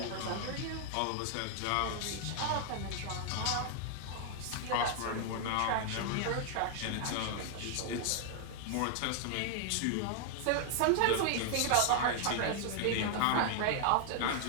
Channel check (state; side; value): different; both; correlation 0.00